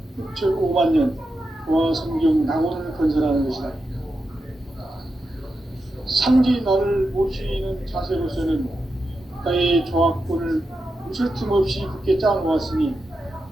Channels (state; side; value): normal; both; correlation 0.88